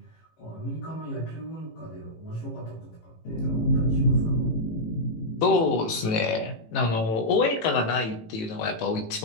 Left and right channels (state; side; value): late; right; 18 ms